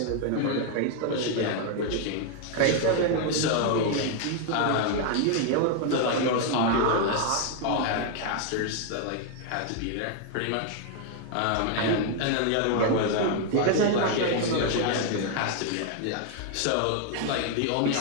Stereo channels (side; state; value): both; different; correlation 0.00